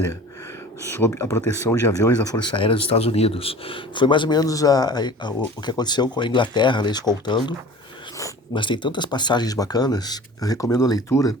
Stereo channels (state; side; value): normal; both; correlation 0.42